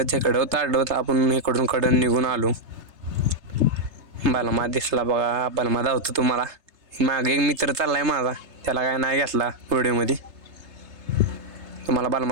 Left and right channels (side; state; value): left; late; 3.3 ms